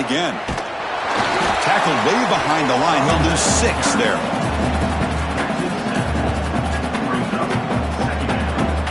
Tackled way behind the line. He'll lose 6 there.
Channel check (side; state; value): both; identical; correlation 1.00